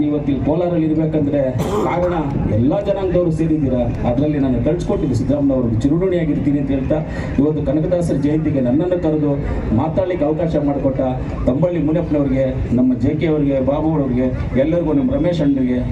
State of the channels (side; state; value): both; identical; correlation 1.00